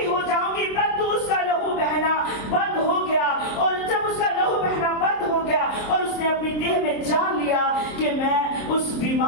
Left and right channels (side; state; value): right; late; 27 ms